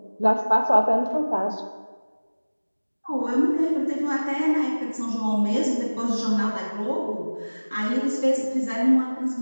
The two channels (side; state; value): both; inverted; correlation -1.00